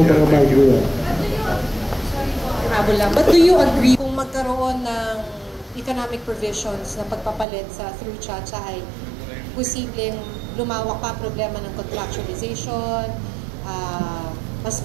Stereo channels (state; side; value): drops out; left; at 7.5 s